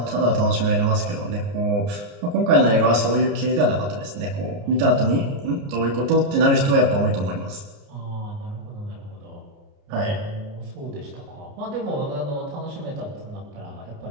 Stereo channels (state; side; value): late; left; 29 ms